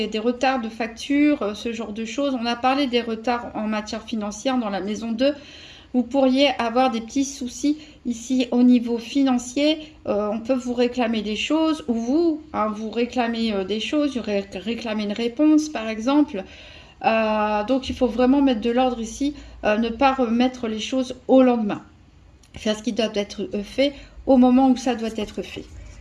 retards de facture, ce genre de choses. On a parlé des retards en matière financière dans la maison 2. Vous pourriez avoir des petits soucis ici au niveau financier. On peut vous réclamer des choses, ou vous, hein, vous réclamez des choses, vous réclamez une réponse par exemple. Donc il faut vraiment mettre de l'ordre ici, ne pas remettre les choses au lendemain. Faire ce qui doit être fait au moment où ça doit être fait.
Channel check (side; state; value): both; identical; correlation 1.00